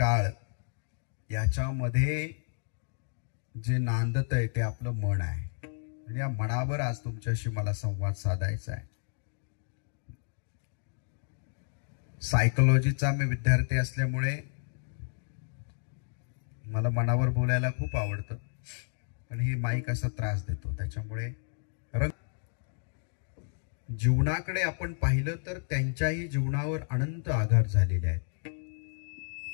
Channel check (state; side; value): silent; right; digital silence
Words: याच्यामध्ये जे नांदत आहे ते आपलं मन आहे. आणि या मनावर आज तुमच्याशी मला संवाद साधायचा आहे. सायकोलॉजीचा मी विद्यार्थी असल्यामुळे मला मनावर बोलायला खूप आवडतं, पण ही माईक असा त्रास देतो. त्याच्यामुळे जीवनाकडे आपण पाहिलं तर त्यांच्याही जीवनावर अनंत आघात झालेले आहेत.